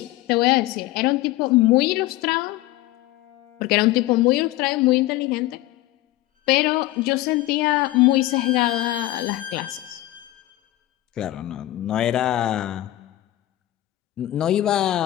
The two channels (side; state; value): right; quieter; 16.2 dB